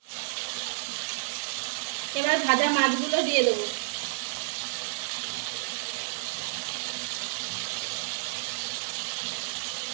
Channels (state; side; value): silent; left; digital silence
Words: ভাজা মাছগুলো দিয়ে দেবো।